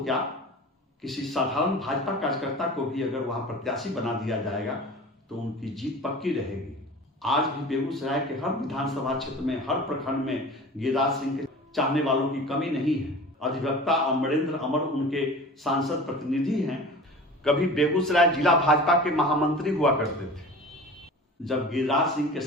किसी साधारण भाजपा कार्यकर्ता को भी अगर वहां प्रत्याशी बना दिया जाएगा तो उनकी जीत पक्की रहेगी। आज भी बेगूसराय के हर विधानसभा क्षेत्र में, हर प्रखंड में गिरिराज सिंह के चाहने वालों की कमी नहीं है। अधिवक्ता अमरेंद्र अमर उनके सांसद प्रतिनिधि हैं। कभी बेगूसराय जिला भाजपा के महामंत्री हुआ करते थे। जब गिरिराज सिंह के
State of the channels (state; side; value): normal; both; correlation 0.38